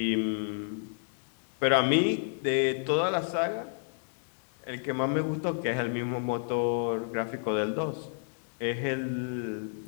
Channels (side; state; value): right; silent; digital silence